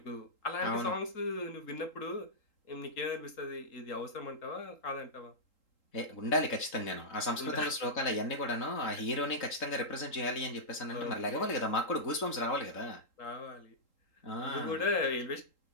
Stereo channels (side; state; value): right; late; 3.8 ms